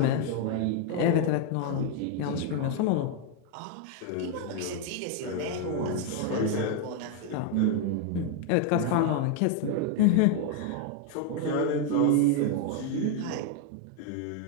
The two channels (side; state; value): both; different; correlation 0.01